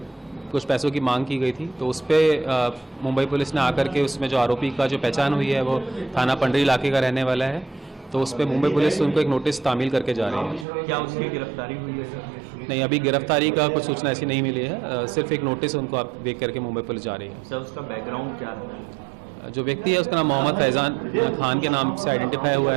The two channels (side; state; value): left; drops out; at 10.7 s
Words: कुछ पैसों की मांग की गई थी। तो उस पर मुंबई पुलिस ने आकर के उसमें जो आरोपी का जो पहचान हुई है वो थाना पंडरी इलाके का रहने वाला है, तो उस पर मुंबई पुलिस उनको एक नोटिस तामील करके जा रही है। क्या उसकी गिरफ्तारी हुई है सर? नहीं, अभी गिरफ्तारी का कुछ सूचना ऐसी नहीं मिली है, सिर्फ एक नोटिस उनको आप देख करके मुंबई पुलिस जा रही है। सर उसका बैकग्राउंड क्या है? जो व्यक्ति है उसका नाम मोहम्मद फैजान खान के नाम से आइडेंटिफाई हुआ